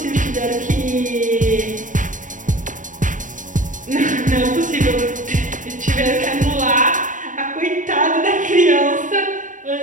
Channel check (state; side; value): late; left; 0.37 ms